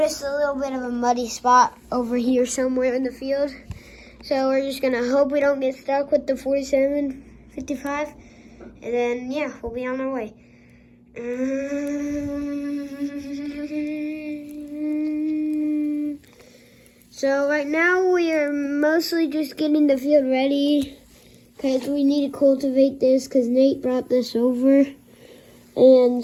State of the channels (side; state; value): both; identical; correlation 1.00